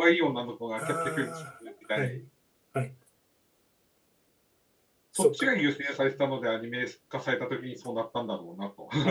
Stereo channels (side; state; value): both; identical; correlation 1.00